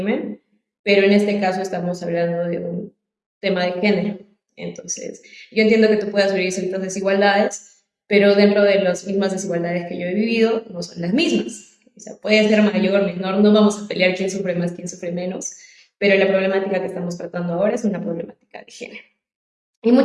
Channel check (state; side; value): identical; both; correlation 1.00